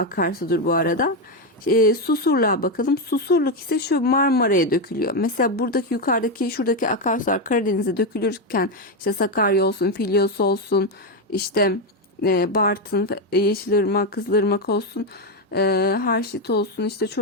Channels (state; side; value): normal; both; correlation 0.08